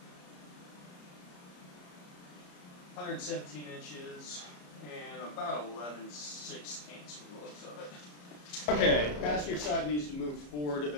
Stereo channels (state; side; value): late; right; 34 ms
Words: $117 inches and about 11/16 from the looks of it. Okay, passenger side needs to move forward